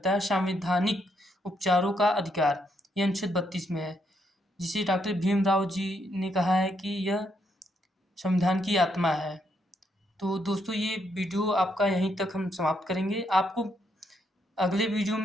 है, संवैधानिक उपचारों का अधिकार, यह अनुच्छेद 32 में है, जिसे डॉक्टर भीमराव जी ने कहा है कि यह संविधान की आत्मा है। तो दोस्तों ये वीडियो आपका यहीं तक हम समाप्त करेंगे। आपको अगले वीडियो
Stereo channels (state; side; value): normal; both; correlation 0.76